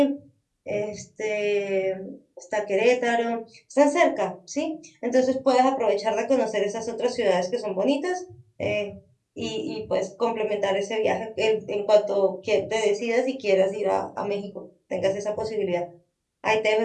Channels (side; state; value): both; identical; correlation 1.00